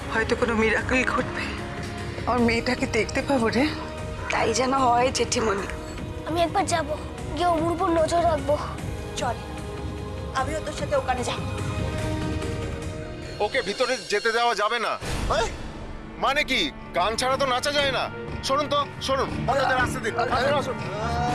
হয়তো কোনো মিরাকল ঘটবে, আমার মেয়েটাকে দেখতে পাবো রে। তাই যেন হয় জেঠিমণি। আমি একবার যাব, গিয়ে ওর উপর নজর রাখবো। চল, আমিও তোর সাথে ওখানে যাব। ওকে ভিতরে যেতে দেওয়া যাবে না। মানে কি, গান ছাড়া তো নাচা যায় না। শুনুন তো, শুনুন, রাস্তা দিন।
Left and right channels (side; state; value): both; identical; correlation 1.00